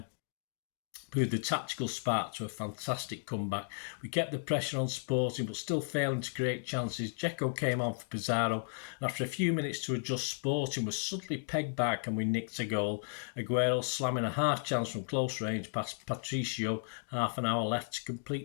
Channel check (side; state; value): right; silent; digital silence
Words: Proved the tactical spark to a fantastic comeback. We kept the pressure on Sporting, but still failing to create chances. Dzeko came on for Pizarro, and after a few minutes to adjust, Sporting was suddenly pegged back and we nicked a goal. Aguero slamming a half chance from close range past Patricio, half an hour left to